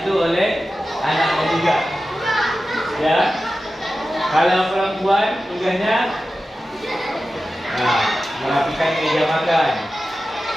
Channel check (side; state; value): both; normal; correlation 0.93